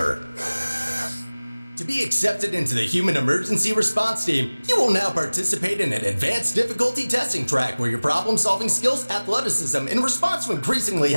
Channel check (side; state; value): both; inverted; correlation -1.00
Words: To be accepted into the Human Emergency Response Team, you will now participate in an advanced difficulty testing track where your problem-solving skills, athleticism, and response to increasingly